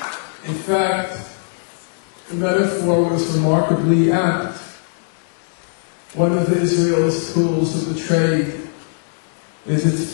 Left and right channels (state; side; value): silent; right; digital silence